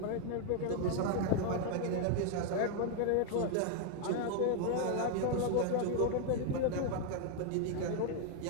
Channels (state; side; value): different; both; correlation 0.00